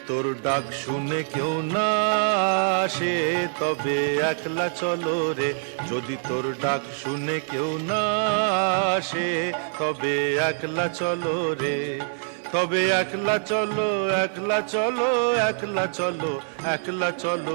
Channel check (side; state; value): left; silent; digital silence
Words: তোর ডাক শুনে কেউ না আসে তবে একলা চলো রে। যদি তোর ডাক শুনে কেউ না আসে তবে একলা চলো রে। তবে একলা চলো, একলা চলো, একলা চলো, একলা